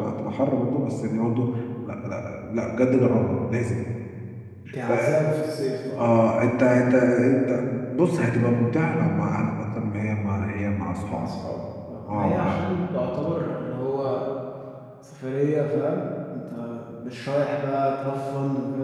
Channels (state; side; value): identical; both; correlation 1.00